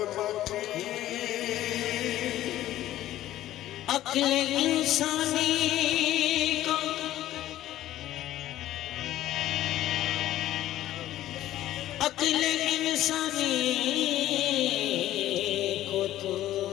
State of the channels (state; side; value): quieter; right; 13.8 dB